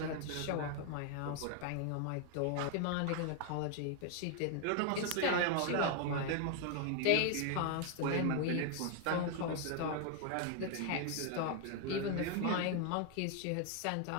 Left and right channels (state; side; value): different; both; correlation 0.01